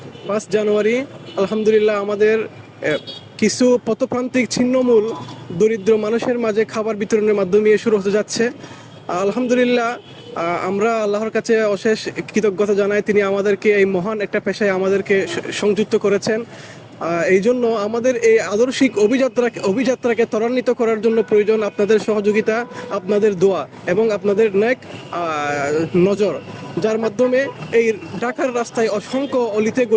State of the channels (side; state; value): both; identical; correlation 1.00